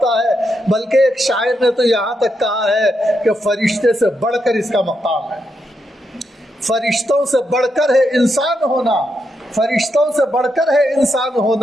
ہے، بلکہ ایک شاعر نے تو یہاں تک کہا ہے کہ فرشتے سے بڑھ کر اس کا مقام ہے۔ فرشتوں سے بڑھ کر ہے انسان ہونا، فرشتوں سے بڑھ کر ہے انسان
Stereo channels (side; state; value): both; normal; correlation 0.82